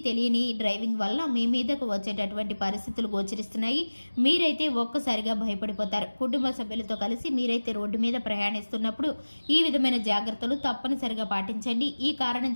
తెలియని డ్రైవింగ్ వల్ల మీ మీదకు వచ్చేటటువంటి పరిస్థితులు గోచరిస్తున్నాయి. మీరైతే ఒక్కసారిగా భయపడిపోతారు. కుటుంబ సభ్యులతో కలిసి మీరైతే రోడ్డు మీద ప్రయాణిస్తున్నప్పుడు ఈ విధమైన జాగ్రత్తలు తప్పనిసరిగా పాటించండి. ఈ కారణం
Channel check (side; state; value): both; inverted; correlation -1.00